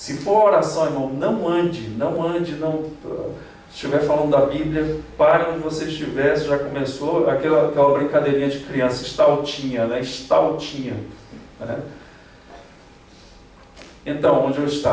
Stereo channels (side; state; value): both; identical; correlation 1.00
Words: for oração, irmão, não ande, se estiver falando da Bíblia, pare onde você estiver. Já começou aquela brincadeirinha de criança, estaltinha, né? Estaltinha, né? Então, onde eu